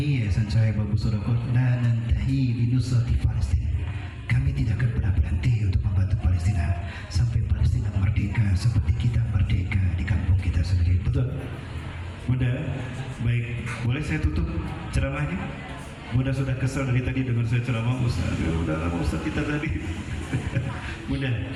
Yayasan Cahaya Bambu Sodaqah la nantahi li nusrati Palestina. Kami tidak akan pernah berhenti untuk membantu Palestina sampai Palestina merdeka seperti kita merdeka di kampung kita sendiri. Betul? Bunda, baik. Boleh saya tutup ceramahnya? Bunda sudah kesal dari tadi dengan saya ceramah Ustaz. Udah lama Ustaz kita tadi. Mudah.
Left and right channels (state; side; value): identical; both; correlation 1.00